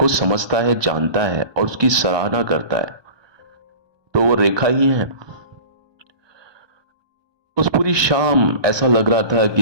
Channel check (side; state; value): left; late; 1.2 ms